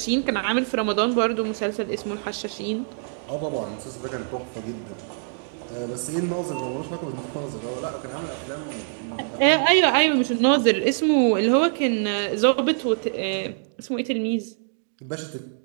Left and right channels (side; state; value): left; silent; digital silence